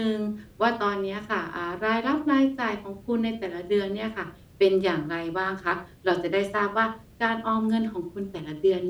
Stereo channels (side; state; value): both; identical; correlation 1.00